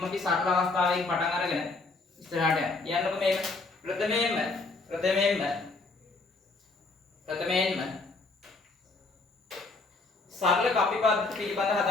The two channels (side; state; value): right; quieter; 3.6 dB